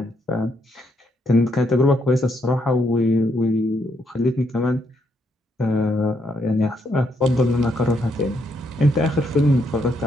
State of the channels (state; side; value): normal; both; correlation 0.75